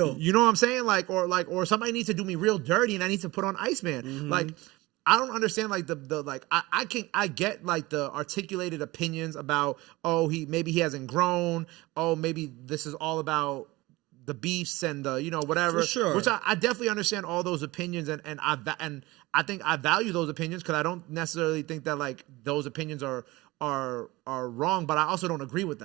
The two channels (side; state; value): left; quieter; 20.7 dB